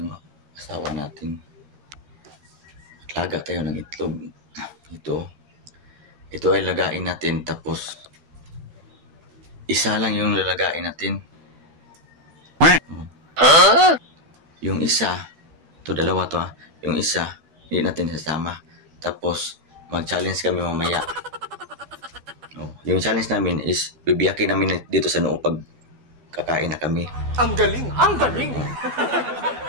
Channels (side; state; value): left; late; 12 ms